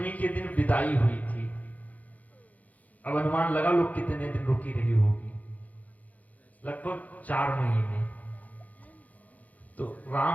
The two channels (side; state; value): right; late; 0.076 ms